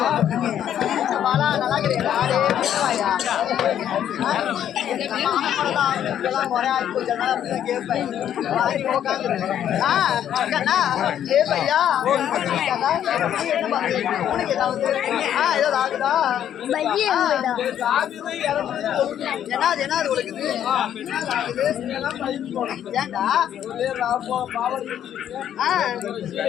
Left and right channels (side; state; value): right; quieter; 10.2 dB